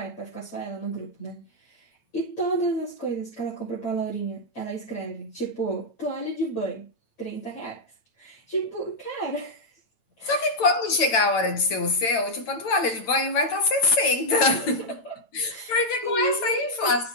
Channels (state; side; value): late; right; 8.9 ms